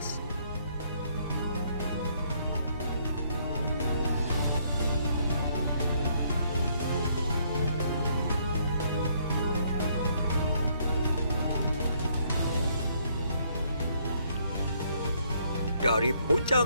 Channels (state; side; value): inverted; both; correlation -0.68